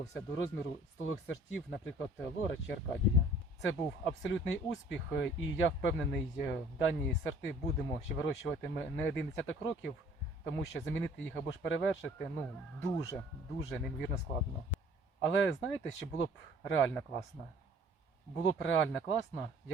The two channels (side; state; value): both; normal; correlation 0.54